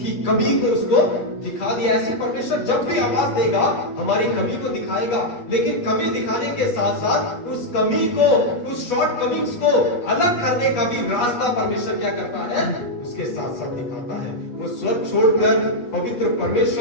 कमी को उसको दिखा दिया। ऐसे परमेश्वर जब भी आवाज देगा हमारी कमी को दिखाएगा, लेकिन कमी दिखाने के साथ साथ उस कमी को, उस शॉर्ट कमिंग्स को अलग करने का भी रास्ता परमेश्वर क्या करता है, उसके साथ साथ दिखाता है। वो स्वर्ग छोड़कर पवित्र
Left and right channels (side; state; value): right; late; 8.3 ms